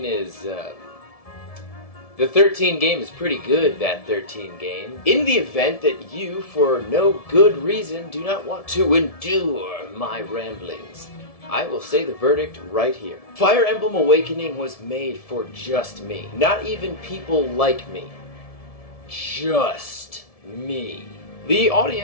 is, The 13 game is pretty good, that 13 game. In the event that you, for no good reason, do not want to endure my ramblings, I will say the verdict right here. Fire Emblem Awakening was made for just me. Not even people like me. Just me. The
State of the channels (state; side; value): late; right; 1.7 ms